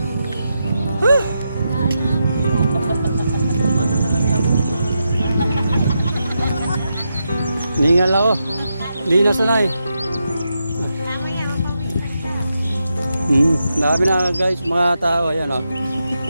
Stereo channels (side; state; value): both; inverted; correlation -0.86